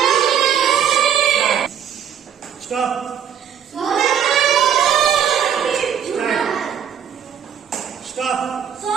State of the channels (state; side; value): quieter; left; 8.7 dB